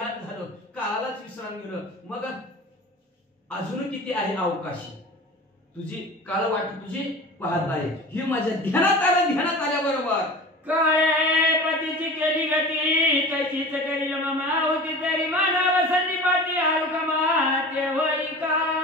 झालं काळालाच विश्राम गेलं मग अजून किती आहे अवकाशी तुझी काळ वाट तुझी पाहत आहे ही माझ्या ध्यानात आल्याबरोबर काळे पतीची केली गती तशीच करील मामा होती तरी मानव संदीपाती आरुकमा ते होई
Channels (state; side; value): normal; both; correlation 0.36